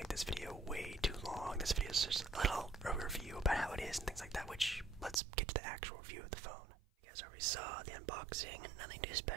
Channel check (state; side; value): drops out; left; at 5.2 s